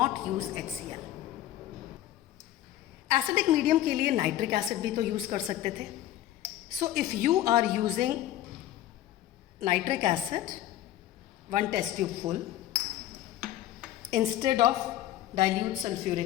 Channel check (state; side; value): quieter; right; 13.4 dB